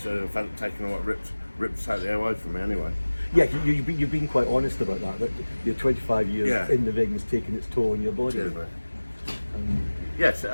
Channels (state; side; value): inverted; both; correlation -1.00